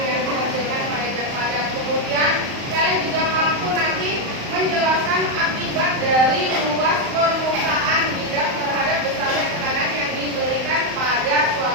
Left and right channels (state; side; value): late; left; 35 ms